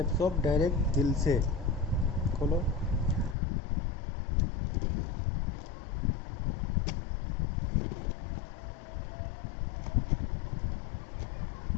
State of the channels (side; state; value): right; drops out; at 3.4 s